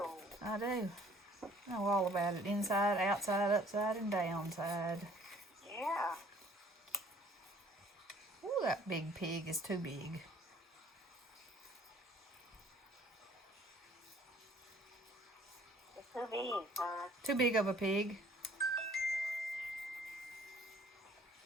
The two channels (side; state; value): both; normal; correlation 0.56